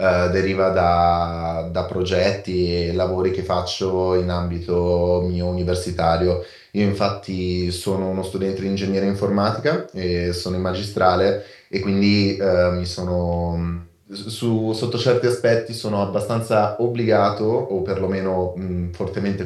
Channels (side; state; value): both; identical; correlation 1.00